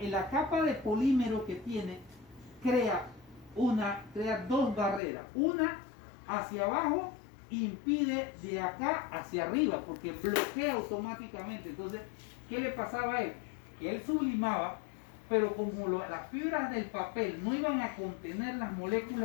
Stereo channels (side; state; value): right; drops out; at 5.0 s